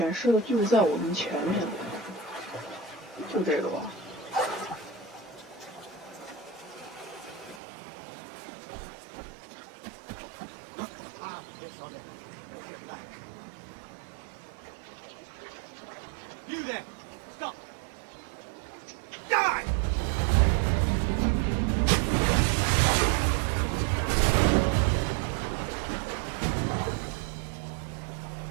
示的就在我们前面，就这个吧。You there! Stop! Die!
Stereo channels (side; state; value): left; drops out; at 7.6 s